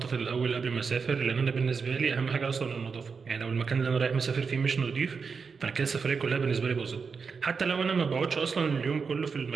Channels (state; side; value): quieter; left; 5.4 dB